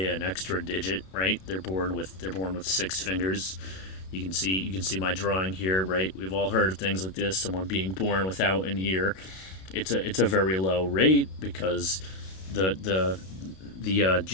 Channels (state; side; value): late; right; 32 ms